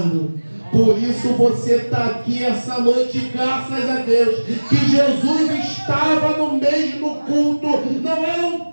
Por isso você está aqui essa noite, graças a Deus, que Jesus estava no mesmo culto. Não era um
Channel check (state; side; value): inverted; both; correlation -1.00